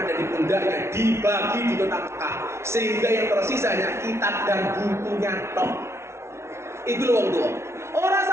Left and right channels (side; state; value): left; late; 0.13 ms